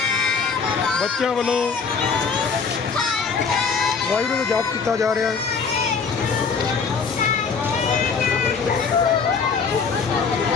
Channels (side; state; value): right; quieter; 5.5 dB